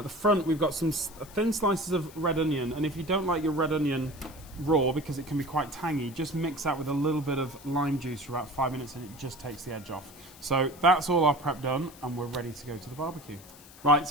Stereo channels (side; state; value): left; noise; hiss, 21 dB below the sound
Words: the front we've got some thin slices of red onion. And if you don't like your red onion raw, because it can be quite tangy, just mix that with a little bit of lime juice for about 5 minutes and it just takes the edge off. So that's all our prep done and we're ready to go to the barbecue. Right,